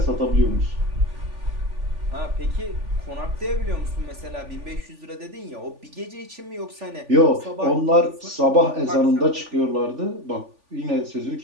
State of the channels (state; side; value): late; left; 3.5 ms